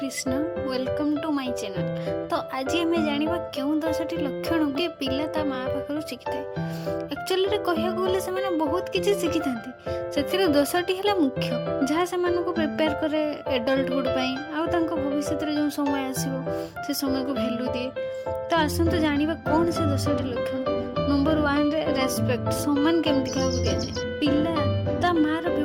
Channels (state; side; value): identical; both; correlation 1.00